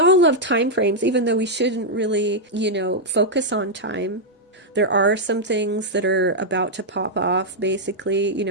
love time frames, even though we shouldn't really, you know, focus on time. There are some things that are about to pop off, basically. You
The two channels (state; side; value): normal; both; correlation -0.04